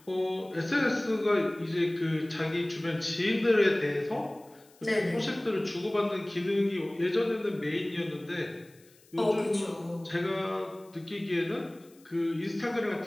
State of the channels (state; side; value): noise; left; hiss, 28 dB below the sound